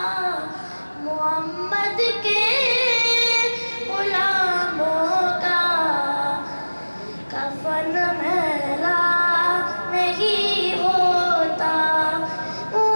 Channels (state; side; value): inverted; both; correlation -1.00